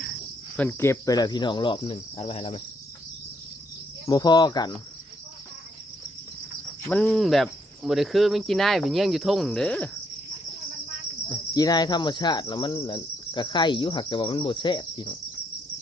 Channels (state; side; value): normal; both; correlation 0.73